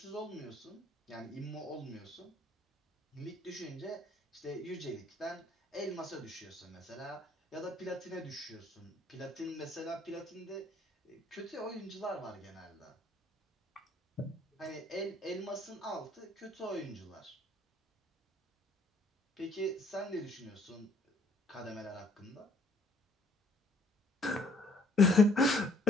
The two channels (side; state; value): both; normal; correlation 0.62